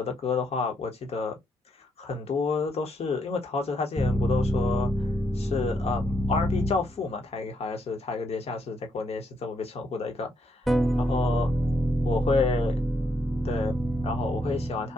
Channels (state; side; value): normal; both; correlation 0.76